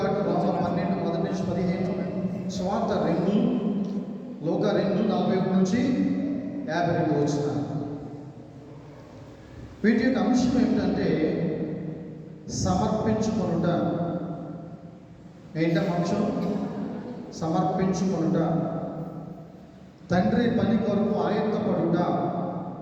రోమా 12 మొదటి నుంచి 15, స్వార్థ 2, లోక 2 41 నుంచి 52 వచ్చిన. వీటి యొక్క అంశం ఏమిటంటే సమర్పించుకొనుట. ఏంటం అంశం? సమర్పించుకొనుట. తండ్రి పని కొరకు ఆయుత్తపడుట.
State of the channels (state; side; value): identical; both; correlation 1.00